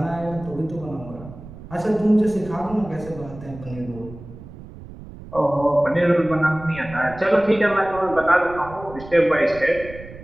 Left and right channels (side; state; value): right; noise; rumble, 16 dB below the sound